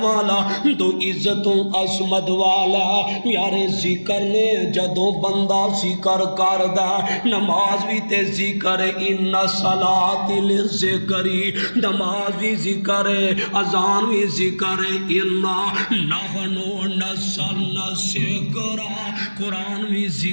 والا دو عزت عظمت والا یارے ذکر نے جدو بندہ ذکر کردا نماز بھی تے ذکر ان صلاۃ للذکری نماز بھی ذکر اذان بھی ذکر انا نحن نزلنا الذکر قرآن بھی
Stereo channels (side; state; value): both; inverted; correlation -1.00